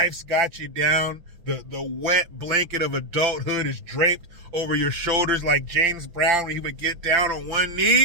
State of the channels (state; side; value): late; left; 5.9 ms